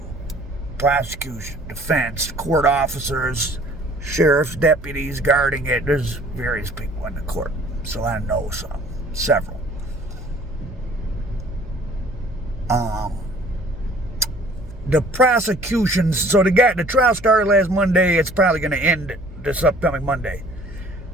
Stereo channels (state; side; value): noise; right; hum, 18 dB below the sound